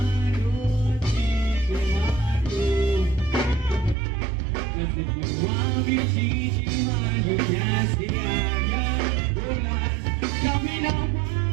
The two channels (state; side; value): drops out; left; at 4.0 s